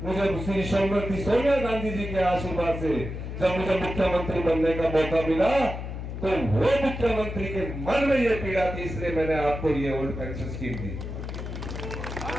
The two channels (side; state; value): left; noise; hum, 7 dB below the sound